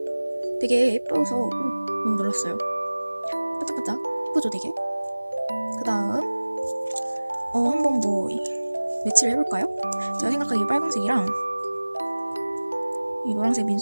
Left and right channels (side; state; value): both; inverted; correlation -1.00